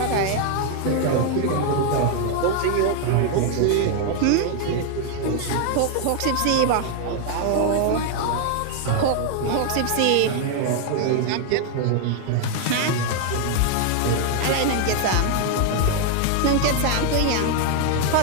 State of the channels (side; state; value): both; different; correlation 0.00